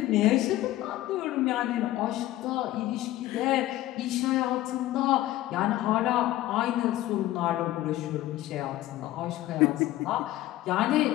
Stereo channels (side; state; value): right; quieter; 15.4 dB